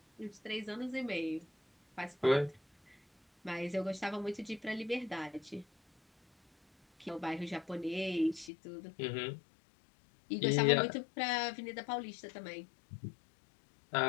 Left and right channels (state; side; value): drops out; right; at 8.5 s